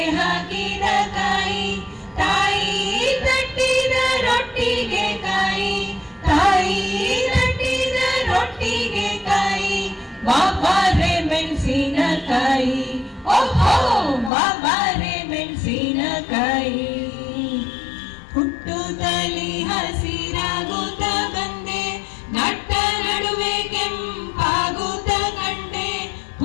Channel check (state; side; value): drops out; right; at 14.3 s